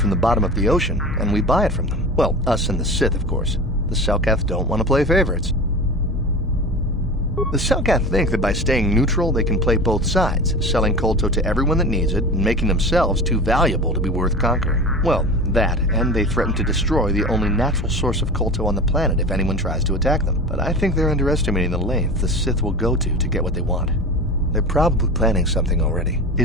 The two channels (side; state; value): both; normal; correlation 0.32